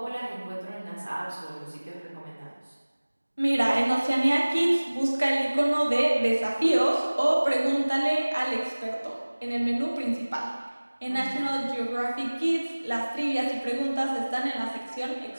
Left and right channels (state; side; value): inverted; both; correlation -1.00